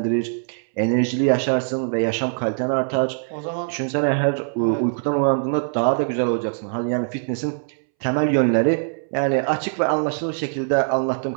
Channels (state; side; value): silent; left; 64 dB below the other